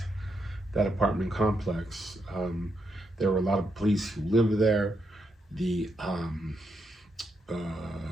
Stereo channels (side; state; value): both; normal; correlation 0.81